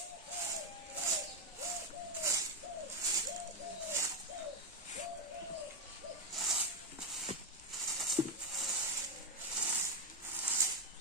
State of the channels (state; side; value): normal; both; correlation 0.05